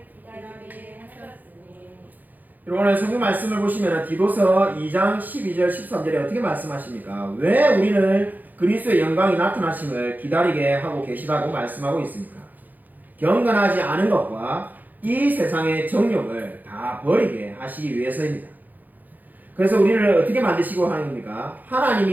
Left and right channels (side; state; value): left; late; 0.084 ms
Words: 기다리게 하셨으니. 오늘 성경 말씀을 보시면 디도서 2장 12절 13절에 어떻게 말씀하십니까? 왜 우리를 그리스도의 영광이 나타나심을 기다리게 하고 계시다고 말씀하고 있습니까? 경건하지 않은 것과 이 세상의 정욕을 다 버리게 하시기 위해서입니다. 그래서 우리를 어떻게 만드시고 하는 겁니까?